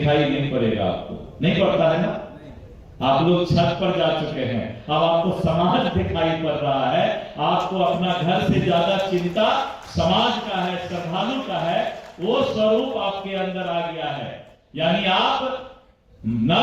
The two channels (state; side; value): identical; both; correlation 1.00